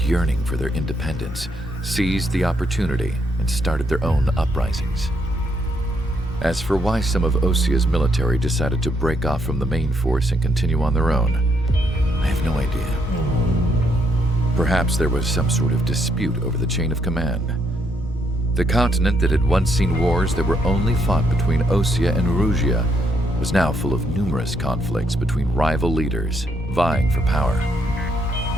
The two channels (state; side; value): normal; both; correlation 0.74